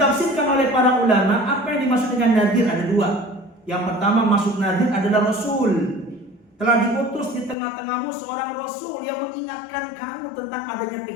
oleh para ulama, apa yang dimaksud dengan nadhir ada dua. Yang pertama, maksud nadhir adalah Rasul. Telah diutus di tengah-tengahmu seorang Rasul yang mengingatkan kamu tentang adanya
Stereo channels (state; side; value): drops out; right; at 7.6 s